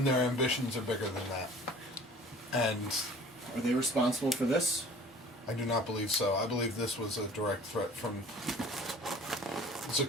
their ambitions are bigger than that. And are they responsible for this? I do not believe so. I believe this was a direct threat from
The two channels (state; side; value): normal; both; correlation 0.48